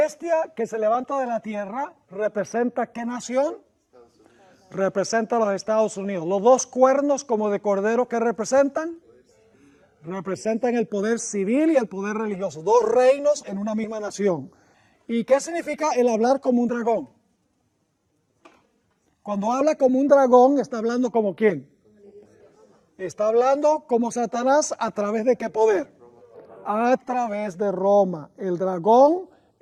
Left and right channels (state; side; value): identical; both; correlation 1.00